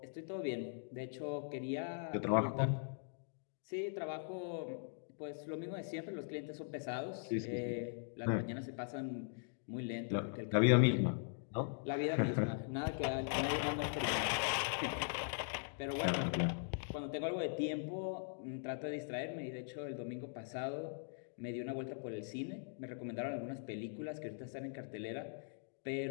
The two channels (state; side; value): silent; right; digital silence